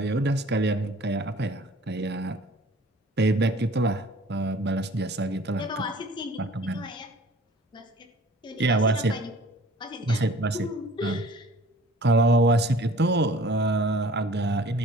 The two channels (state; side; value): normal; both; correlation 0.48